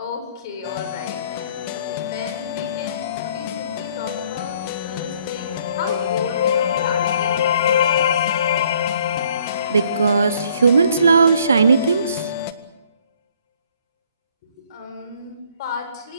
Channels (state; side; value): inverted; both; correlation -0.62